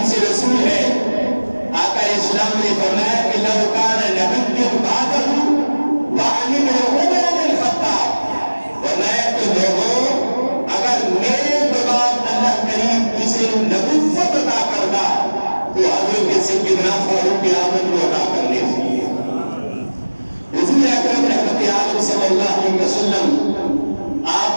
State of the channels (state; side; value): inverted; both; correlation -1.00